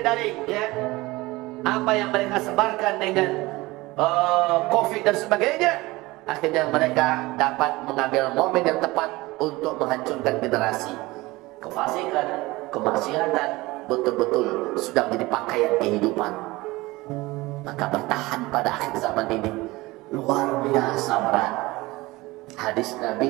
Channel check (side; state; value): left; quieter; 20.7 dB